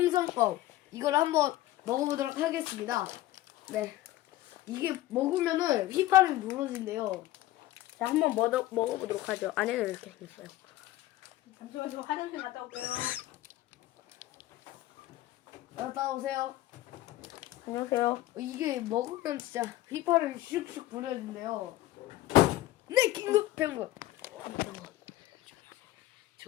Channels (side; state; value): right; quieter; 15.6 dB